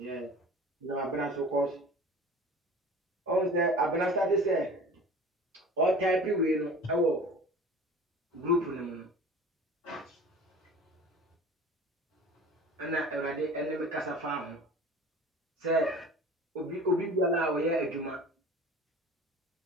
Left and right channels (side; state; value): both; normal; correlation 0.41